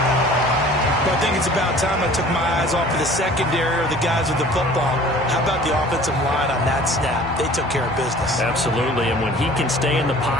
But I think it's about time I took my eyes off of the secondary or the guys with the football. How about the offensive line on that snap? They took care of business. Absolutely, and when he can stay in the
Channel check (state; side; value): normal; both; correlation 0.48